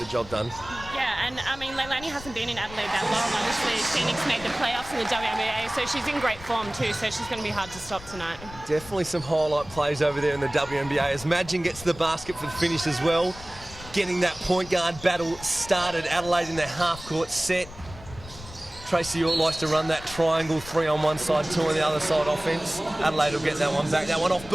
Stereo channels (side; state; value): left; noise; rumble, 16 dB below the sound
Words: job done. Yeah, and I mean, Leilani hasn't been in Adelaide that long. Obviously, Phoenix made the playoffs in the WNBL, so she's in great form too, so she's going to be hard to stop tonight. Definitely some highlight plays over there in the WNBA as Madgen gets the basket for the finish as well. Getting that point guard battle started. Adelaide in their half-court set. Tracy York likes to run that triangle, 3 on one side, 2 on the other side offense. Adelaide will get that one back. That one off